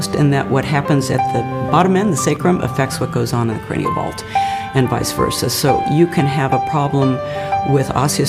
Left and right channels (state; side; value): identical; both; correlation 1.00